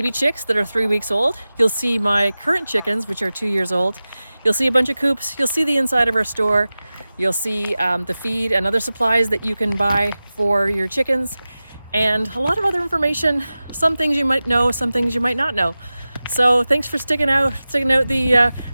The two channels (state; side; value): inverted; both; correlation -0.96